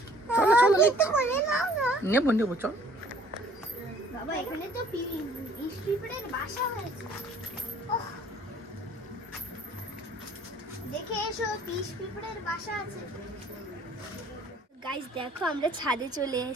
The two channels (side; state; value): both; normal; correlation 0.56